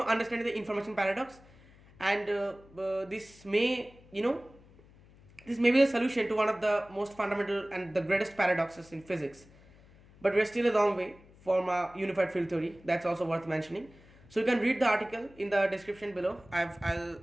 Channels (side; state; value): left; noise; hum, 25 dB below the sound